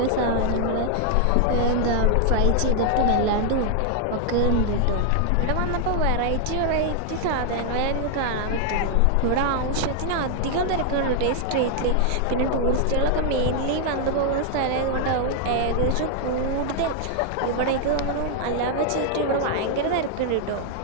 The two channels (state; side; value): different; both; correlation 0.00